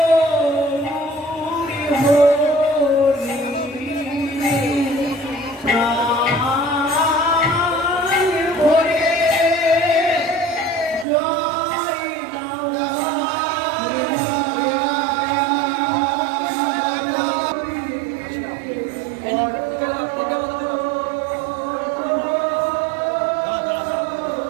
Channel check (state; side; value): drops out; left; at 11.1 s